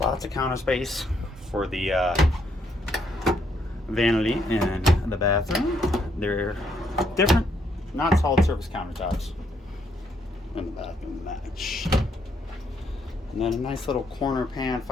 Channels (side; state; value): both; normal; correlation 0.73